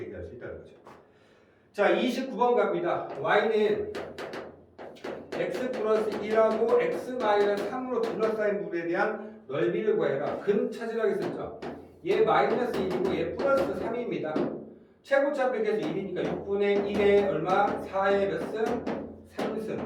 얘기할 수 있다는 거죠. 자, 29번 갑니다. y는 x 플러스 1하고 x 마이너스 3으로 둘러싸인 물에 대한 넓이를 구해라. 근 찾으라고 했었죠. 얘 마이너스 1이고 얘 플러스 3입니다. 최고차 빼기해서 1이니까 6분의 1에 얼마? 4의 몇 승?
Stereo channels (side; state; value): both; identical; correlation 1.00